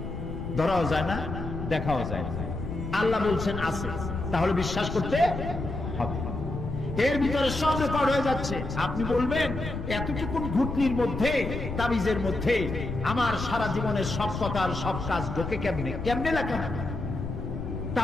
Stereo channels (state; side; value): noise; left; rumble, 6 dB below the sound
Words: ধরাও যায় না, দেখাও যায় না। আল্লাহ বলছেন আছে, তাহলে বিশ্বাস করতে হবে। এর ভিতরে সব রেকর্ড হয়ে যাচ্ছে। আপনি বলবেন এতটুকু ঘুটলির মধ্যে, তাবিজের মধ্যে আমার সারা জীবনের সব কথার সব কাজ ঢোকে কেমনে? কেমনে লেখা?